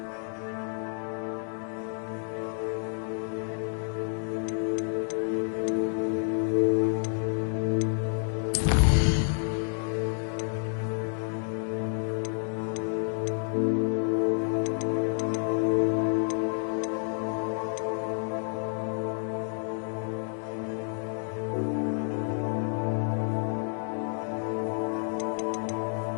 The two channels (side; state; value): right; silent; 58 dB below the other